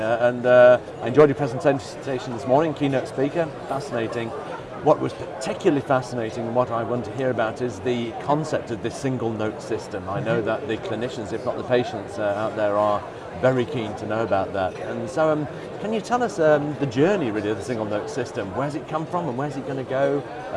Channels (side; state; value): both; identical; correlation 1.00